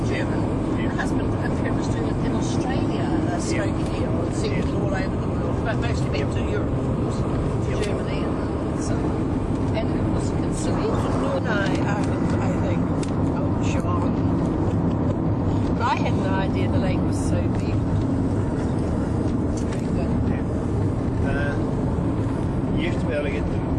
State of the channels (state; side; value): identical; both; correlation 1.00